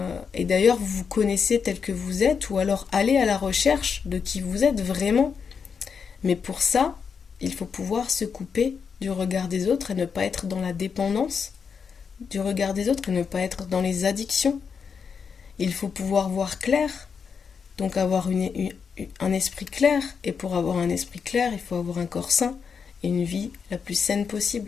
et d'ailleurs vous vous connaissez tel que vous êtes, ou alors allez à la recherche de qui vous êtes vraiment. Mais pour ça, il faut pouvoir se couper du regard des autres et ne pas être dans la dépendance du regard des autres et ne pas être dans les addictions. Il faut pouvoir voir clair, donc avoir un esprit clair. Et pour avoir un esprit clair, il faut avoir un corps sain et une vie la plus saine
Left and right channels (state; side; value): quieter; right; 6.2 dB